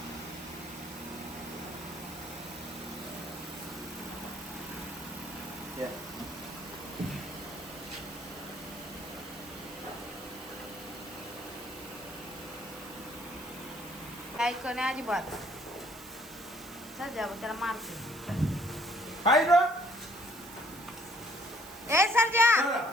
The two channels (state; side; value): noise; right; hiss, 17 dB below the sound